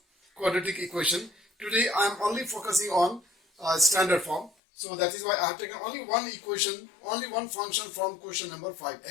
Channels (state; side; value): drops out; right; at 4.5 s